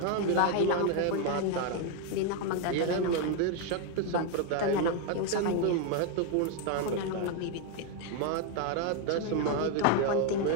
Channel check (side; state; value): both; different; correlation 0.01